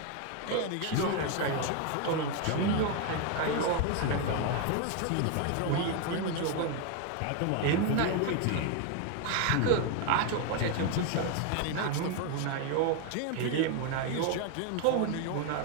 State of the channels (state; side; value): different; both; correlation 0.01